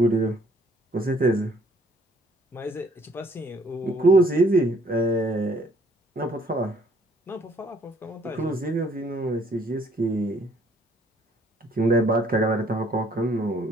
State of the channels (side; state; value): both; normal; correlation 0.63